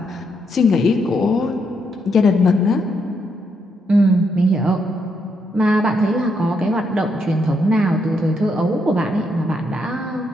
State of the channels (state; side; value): normal; both; correlation 0.77